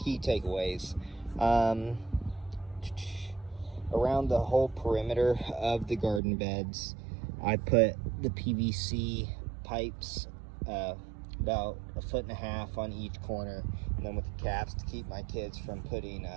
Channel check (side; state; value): left; drops out; at 6.2 s